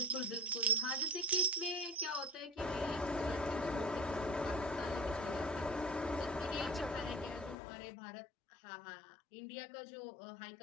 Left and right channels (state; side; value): drops out; right; at 7.6 s